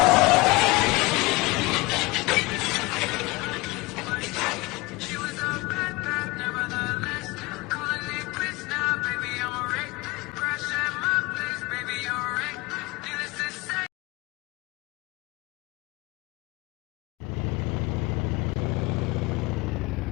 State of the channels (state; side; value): quieter; right; 23.3 dB